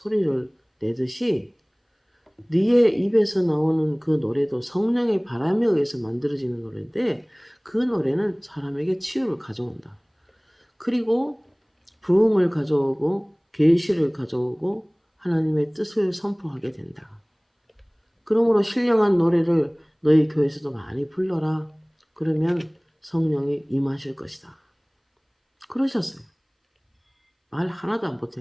내듯이 네의 입에서 나오는 그 노래도 성령의 바람에 의해서 만들어지는 노래인데, 그 노래는 사람에게 치유를 가져온다. 그리고 부흥을 가져오고 계시를 가져오고 하나님의 뜻을 선포하게 된다. 그러므로 신령한 노래를 너희 교회에서도 많이 불러라. 그러면 성령이 임하실 것이다. 그러셨어요. 말 하나도 안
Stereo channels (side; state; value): both; identical; correlation 1.00